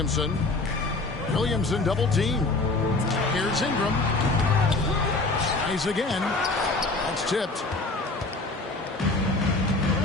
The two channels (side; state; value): right; quieter; 3.3 dB